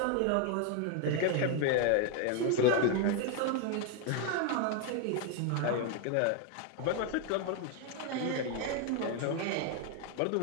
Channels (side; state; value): both; different; correlation 0.01